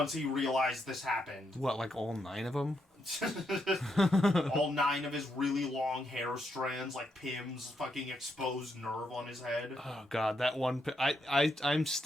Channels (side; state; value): both; normal; correlation 0.80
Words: he realized this happened. What, like all 9 of them? All 9 of his really long hair strands, like Pim's fucking exposed nerve on his head. Oh god, that one. I'm